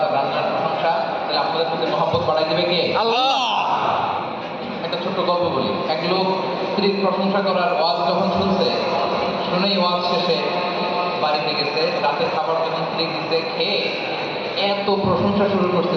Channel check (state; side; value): identical; both; correlation 1.00